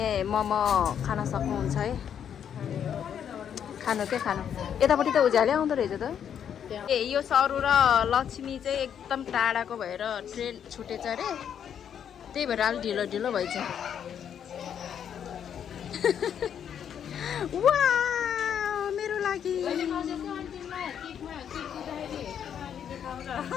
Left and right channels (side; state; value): right; quieter; 8.7 dB